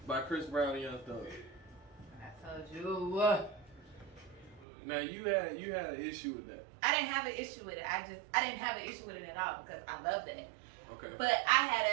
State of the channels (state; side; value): drops out; left; at 4.7 s